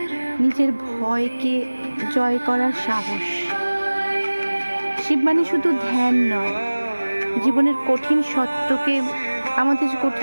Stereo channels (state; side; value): inverted; both; correlation -1.00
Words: নিজের ভয়কে জয় করার সাহস। শিব মানে শুধু ধ্যান নয়, জীবনের কঠিন সত্যকে, আমাদের যে